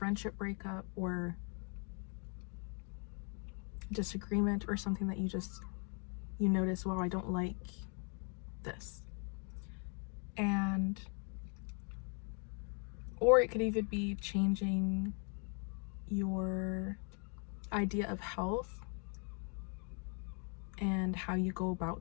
breakup or disagreement, or something that you notice, wow, I don't like this. Or it could even be changing your idea of health and how you go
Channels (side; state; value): right; quieter; 38.7 dB